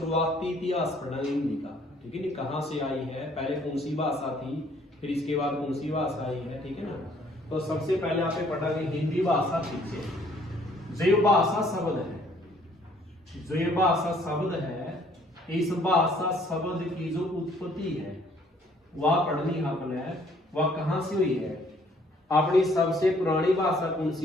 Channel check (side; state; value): both; normal; correlation 0.62